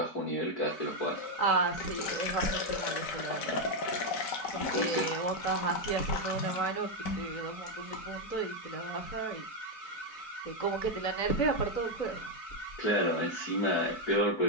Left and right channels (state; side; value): late; right; 4.6 ms